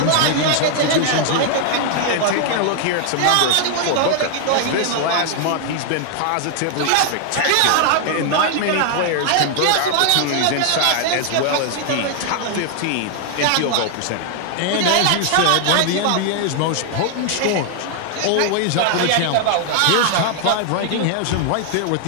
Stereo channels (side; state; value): both; different; correlation 0.00